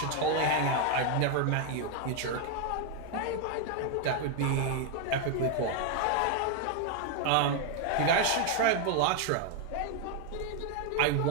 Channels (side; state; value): both; different; correlation 0.01